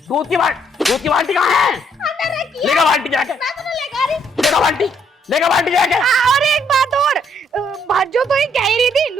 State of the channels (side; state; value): both; normal; correlation 0.69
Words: दूध की बाल्टी कहाँ है? अंदर रखी है। लेगा बाल्टी जाके, मैं तो नहीं लेगा रही। लेगा बाल्टी जाके। और एक बात और, भाजो तो ही कह रही थी,